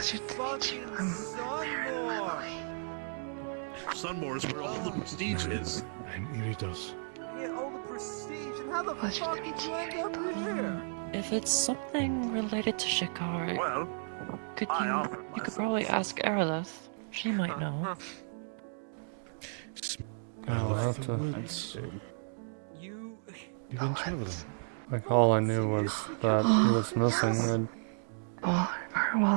to meet you. I'm Sunmore is where all the prestige is. It really does. Get all the prestige, and how the Pleasure fuck to did meet you you. end up here? If it's something related to Shikar, Well, could I you offered could myself. probably ask Aerolith. She might know. I'll have to. You've been traveling. Like, all I knew was that he was missing. well,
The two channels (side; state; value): left; silent; digital silence